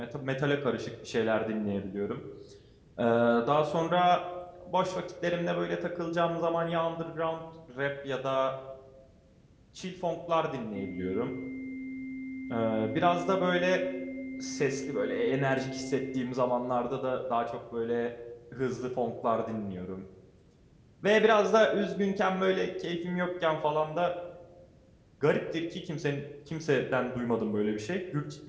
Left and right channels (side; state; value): both; identical; correlation 1.00